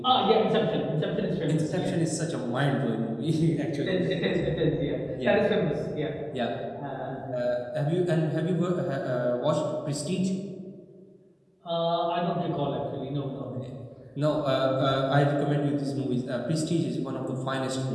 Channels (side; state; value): both; identical; correlation 1.00